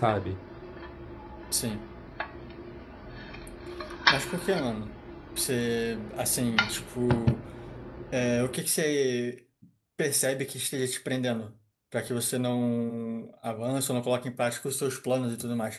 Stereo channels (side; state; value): both; identical; correlation 1.00